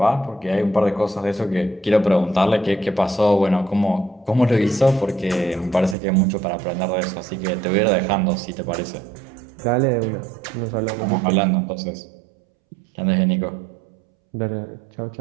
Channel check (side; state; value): left; drops out; at 6.0 s